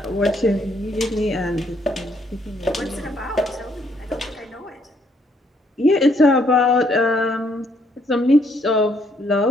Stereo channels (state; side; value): normal; both; correlation 0.69